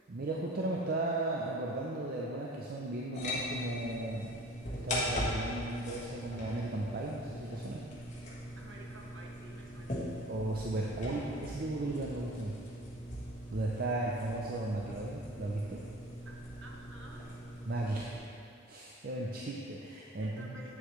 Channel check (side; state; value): both; normal; correlation 0.45